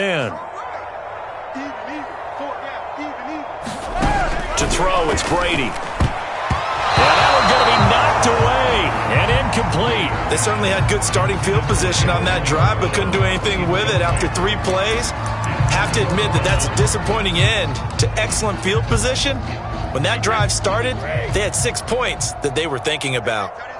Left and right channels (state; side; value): identical; both; correlation 1.00